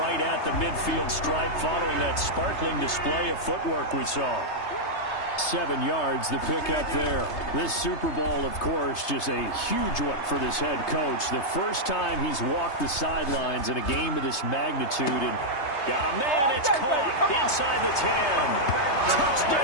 at the midfield stripe following that sparkling display of footwork we saw. 7 yards, the pickup there. This Super Bowl, of course, just a huge one for this head coach. The first time he's walked the sidelines in a game of this magnitude, and got a man, it's caught inside the 10.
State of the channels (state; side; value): late; right; 3.3 ms